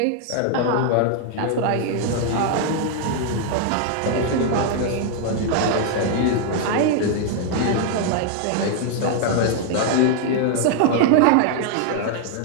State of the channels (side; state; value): both; different; correlation 0.00